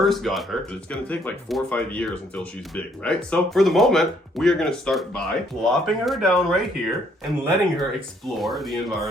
got her. It's gonna take like 4 or 5 years until she's big, right? So for the moment, we are gonna start by plopping her down right here and letting her explore the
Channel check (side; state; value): both; normal; correlation 0.67